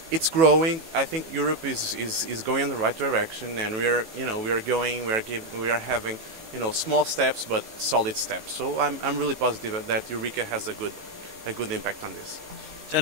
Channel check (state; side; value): late; left; 18 ms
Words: it's growing. I think Europe is going in the right direction, and we are having, you know, small steps but solid steps. So I'm really positive that Eureka has a good impact on this.